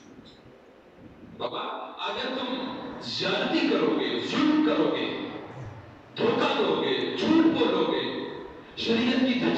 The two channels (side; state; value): both; identical; correlation 1.00